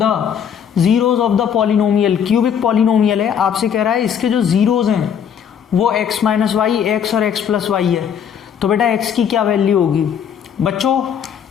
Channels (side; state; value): right; quieter; 8.1 dB